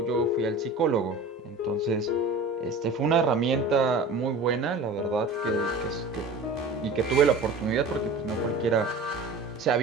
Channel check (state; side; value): quieter; left; 3.1 dB